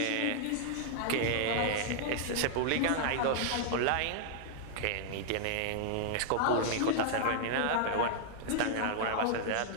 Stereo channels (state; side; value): different; both; correlation -0.01